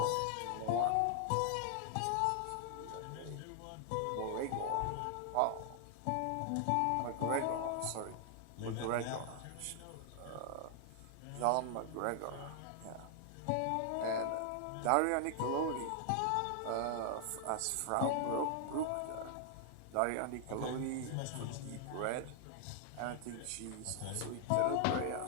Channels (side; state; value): both; different; correlation 0.00